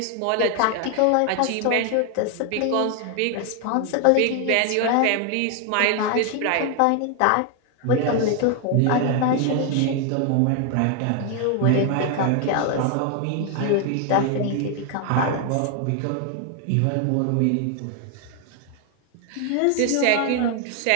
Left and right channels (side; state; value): both; different; correlation 0.00